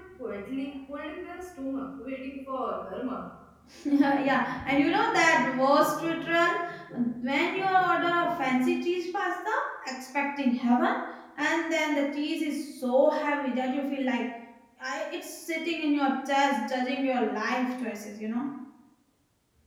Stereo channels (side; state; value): both; identical; correlation 1.00